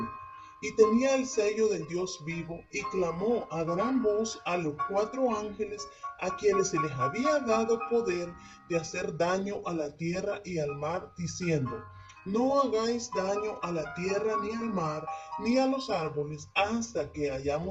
y tenía el sello del Dios vivo, y clamó a gran voz a los 4 ángeles a quienes se les había dado poder de hacer daño a la tierra y al mar, diciendo: no hagáis daño a la tierra ni al mar ni a los árboles hasta que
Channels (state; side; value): identical; both; correlation 1.00